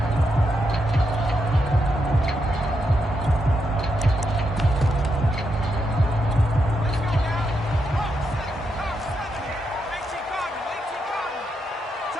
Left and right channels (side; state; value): both; normal; correlation 0.82